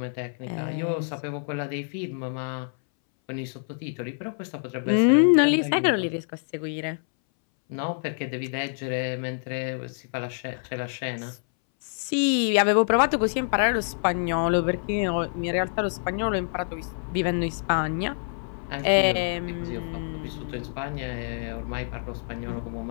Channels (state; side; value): silent; right; 60 dB below the other